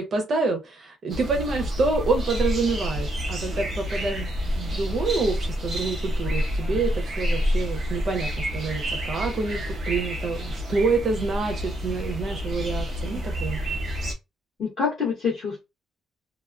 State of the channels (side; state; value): both; normal; correlation 0.74